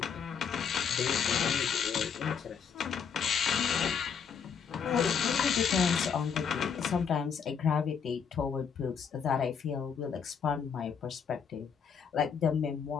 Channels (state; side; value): quieter; right; 6.8 dB